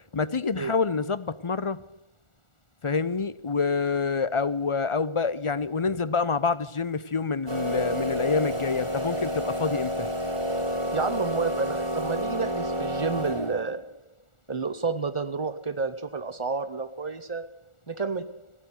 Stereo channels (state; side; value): late; right; 1.4 ms